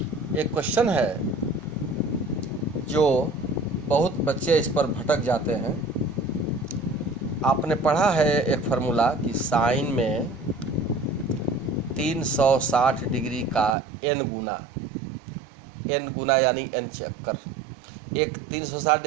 एक क्वेश्चन है जो बहुत बच्चे इस पर भटक जाते हैं। आपने पढ़ा है एक फार्मूला कि साइन में 360 डिग्री का n गुना यानी n चक्कर, एक 360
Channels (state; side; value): drops out; left; at 13.8 s